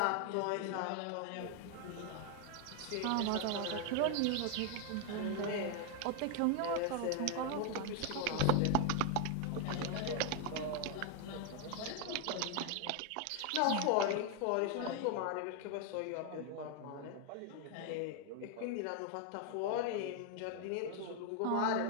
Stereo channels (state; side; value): different; both; correlation 0.01